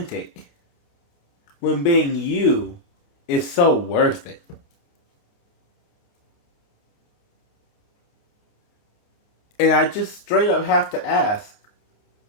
when being you is so worth it. And I just straight up have to ask,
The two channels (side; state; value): right; late; 29 ms